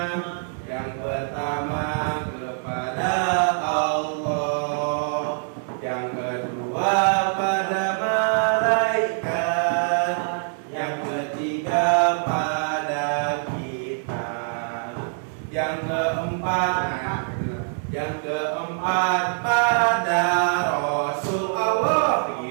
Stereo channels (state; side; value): silent; left; 62 dB below the other